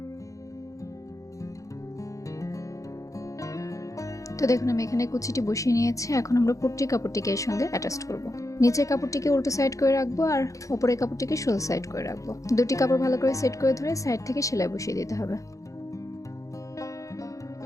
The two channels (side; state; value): right; late; 0.16 ms